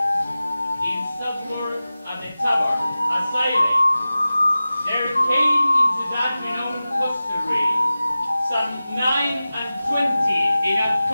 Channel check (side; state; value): both; inverted; correlation -0.96